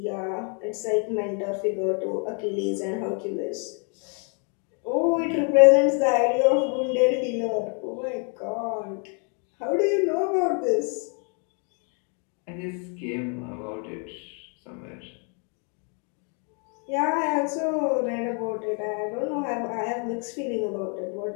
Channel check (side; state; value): right; quieter; 39.5 dB